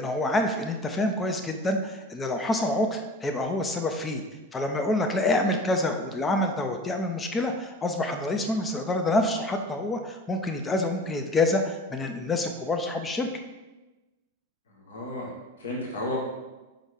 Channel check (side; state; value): both; normal; correlation 0.41